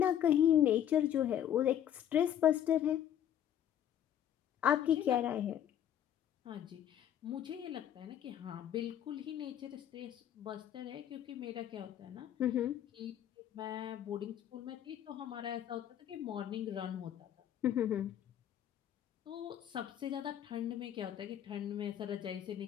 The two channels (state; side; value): quieter; right; 10.3 dB